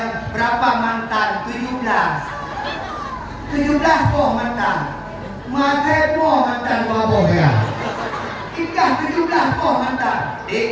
berapa mantan? 17 kok mantan. Mata po mantan wabo ya. Ikah 17 kok mantan.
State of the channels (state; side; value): identical; both; correlation 1.00